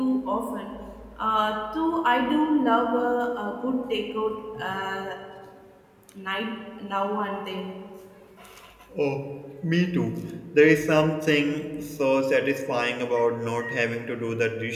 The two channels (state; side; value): identical; both; correlation 1.00